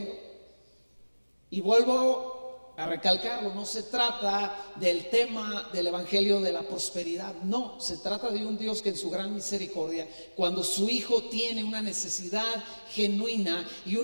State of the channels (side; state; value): both; inverted; correlation -1.00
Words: Y vuelvo a recalcarlo, no se trata del tema del evangelio de la prosperidad. No, se trata de un Dios que en su gran misericordia, cuando su hijo tiene una necesidad genuina, y